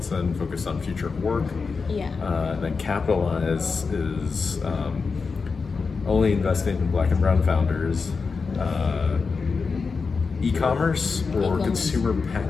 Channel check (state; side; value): quieter; right; 4.8 dB